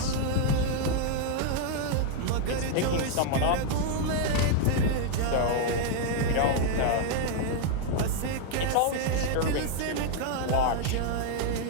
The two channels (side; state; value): both; different; correlation 0.00